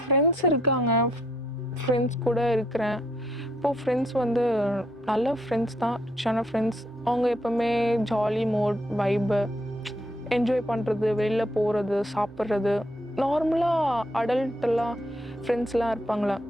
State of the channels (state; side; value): normal; both; correlation 0.72